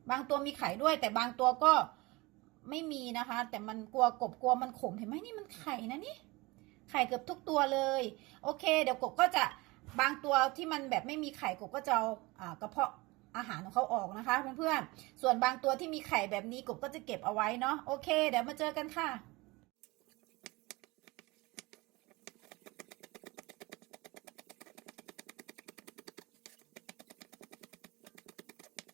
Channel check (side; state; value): left; quieter; 23.1 dB